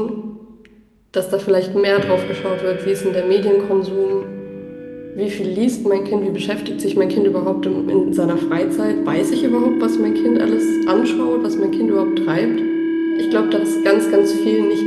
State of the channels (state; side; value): identical; both; correlation 1.00